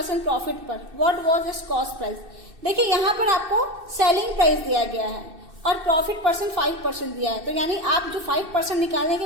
profit पर। What was its cost price. देखिए यहाँ पर आपको सेलिंग प्राइस दिया गया है और प्रॉफिट परसेंट 5% दिया है, तो यानी आप जो 5% निकालेंगे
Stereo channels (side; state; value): left; late; 2.6 ms